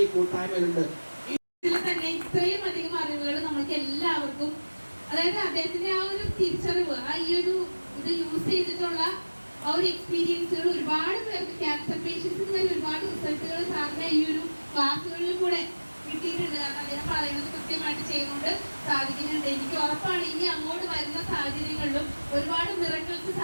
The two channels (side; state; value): both; inverted; correlation -1.00